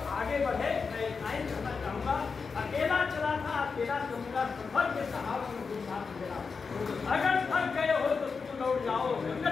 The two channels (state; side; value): quieter; right; 5.1 dB